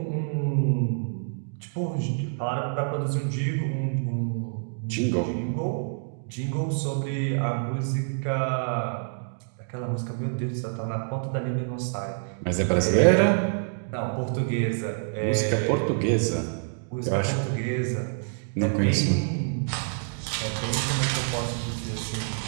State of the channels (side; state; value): left; silent; digital silence